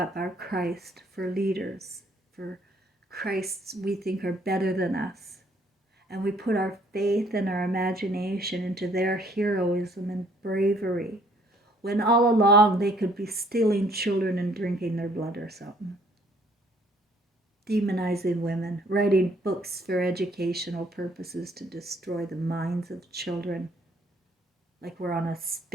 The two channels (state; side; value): normal; both; correlation 0.62